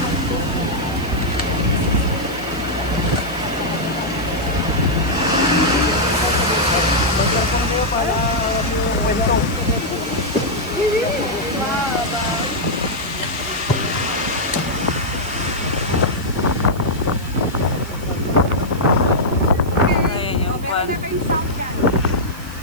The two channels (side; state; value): right; noise; hiss, 19 dB below the sound